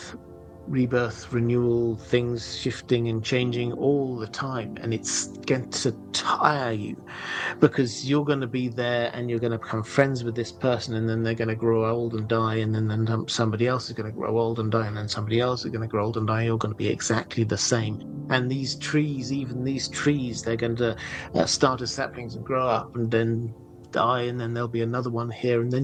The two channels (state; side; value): identical; both; correlation 1.00